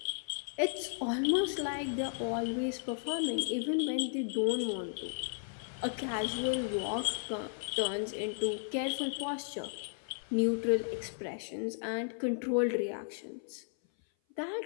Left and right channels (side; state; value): right; silent; 55 dB below the other